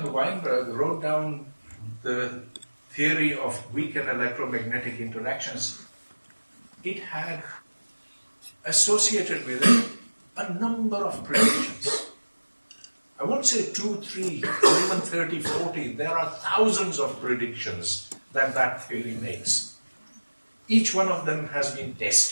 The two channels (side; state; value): both; inverted; correlation -1.00